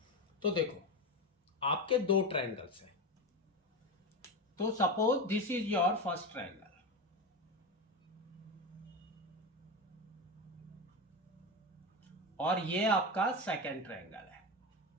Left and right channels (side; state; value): both; normal; correlation 0.19